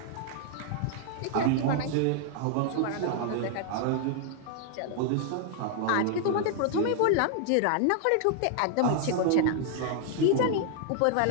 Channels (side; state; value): both; different; correlation 0.00